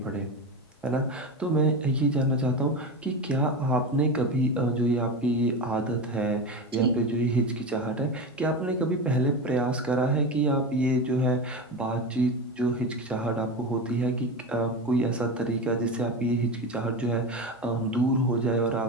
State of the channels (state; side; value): normal; both; correlation 0.22